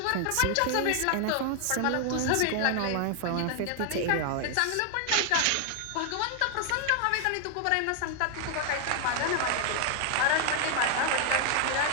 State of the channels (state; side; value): different; both; correlation 0.00